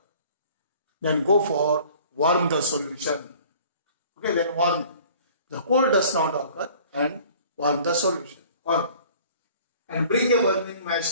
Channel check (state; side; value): inverted; both; correlation -0.51